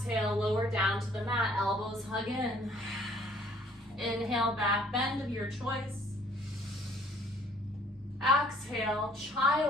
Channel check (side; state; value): both; normal; correlation 0.59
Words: lower down to the mat, elbows hug in. Inhale, back bend of your choice. Exhale,